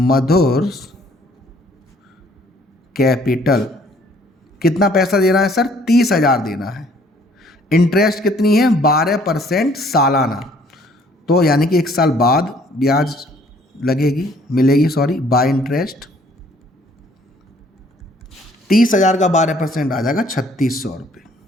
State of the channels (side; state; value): both; normal; correlation 0.60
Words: capital. कितना पैसा देना है सर? 30,000 देना है। इंटरेस्ट कितनी है? 12% सालाना, तो यानी कि 1 साल बाद ब्याज लगेगी, मिलेगी, सॉरी, बाय इंटरेस्ट। 30,000 का 12% आ जाएगा 3,600 रुपये।